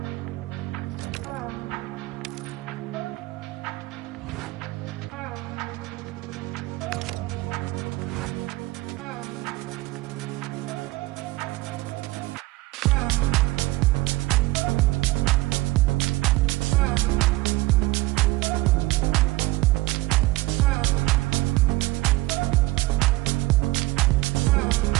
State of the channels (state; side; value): quieter; left; 19.6 dB